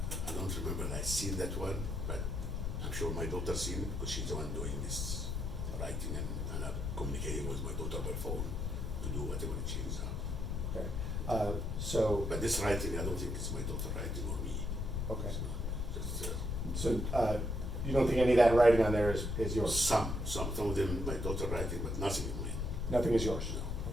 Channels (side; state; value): left; noise; rumble, 2 dB below the sound